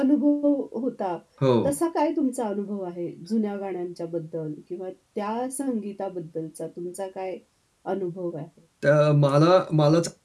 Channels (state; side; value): identical; both; correlation 1.00